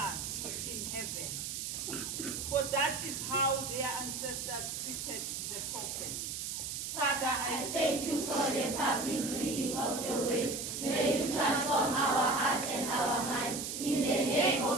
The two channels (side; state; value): right; noise; hiss, 4 dB below the sound